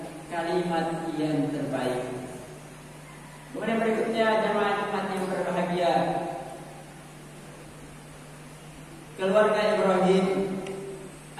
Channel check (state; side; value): identical; both; correlation 1.00